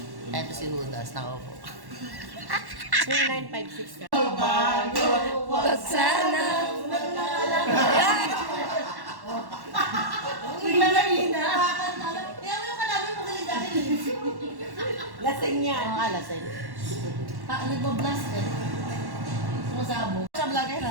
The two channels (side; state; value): left; late; 1.1 ms